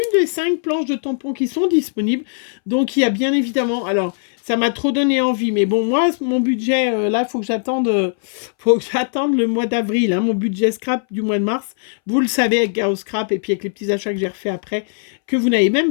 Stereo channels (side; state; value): right; silent; 64 dB below the other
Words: des 5 planches de tampons qui sont disponibles. Donc, il y a bien évidemment... Alors, ça m'a trop donné envie. Mais bon, moi, mon budget, là, il faut que j'attende le mois d'avril. Hein, mon budget scrap du mois de mars. Vous le savez, avec Gao Scrap et puis avec les petits achats que j'ai refait après, que vous n'avez